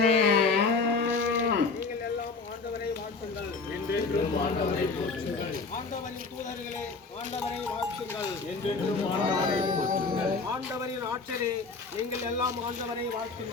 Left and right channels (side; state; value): right; quieter; 4.3 dB